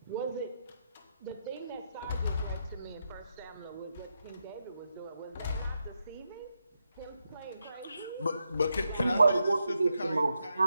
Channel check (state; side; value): inverted; both; correlation -0.83